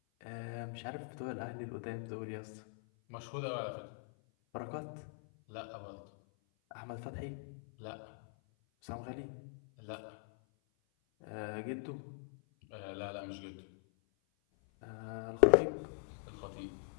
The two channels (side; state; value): right; silent; 51 dB below the other